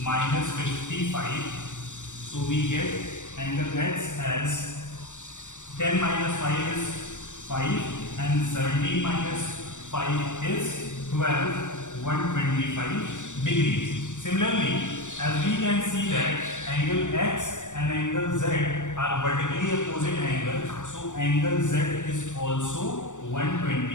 minus 55. So we get angle X as 10 minus 5 is 5 and 17 minus 5 is 12, 125 degrees. Similarly, as we can see that angle X and angle Z are vertically opposite angle, so angle Z is also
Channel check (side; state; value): right; late; 0.85 ms